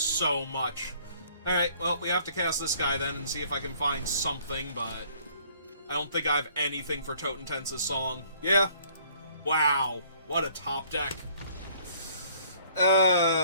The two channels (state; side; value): inverted; both; correlation -0.59